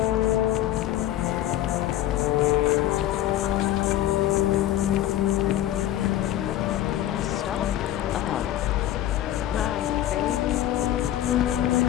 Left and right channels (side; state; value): right; quieter; 12.9 dB